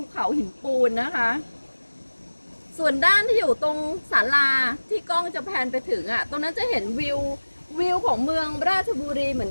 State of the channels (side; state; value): both; inverted; correlation -1.00